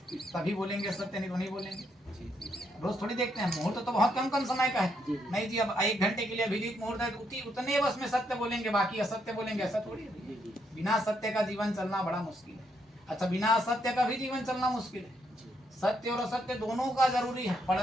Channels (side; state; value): both; normal; correlation 0.76